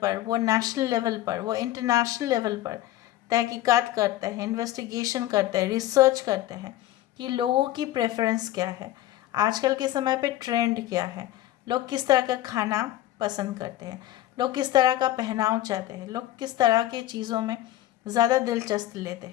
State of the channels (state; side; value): quieter; right; 14.6 dB